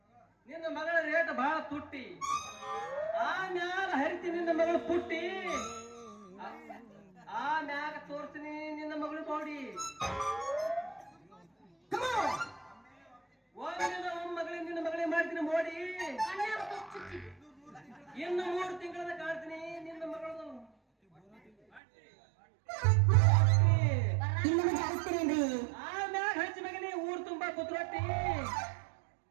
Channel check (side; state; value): left; drops out; at 21.8 s